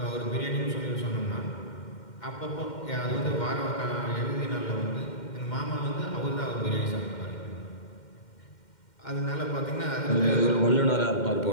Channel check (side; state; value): right; late; 2.1 ms